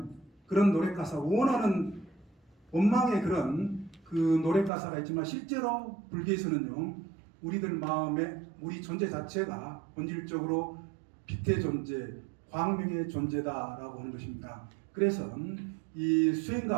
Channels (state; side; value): drops out; left; at 4.7 s